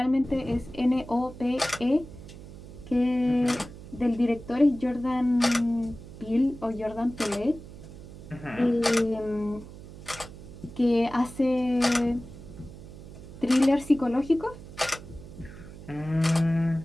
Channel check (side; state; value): right; noise; hum, 15 dB below the sound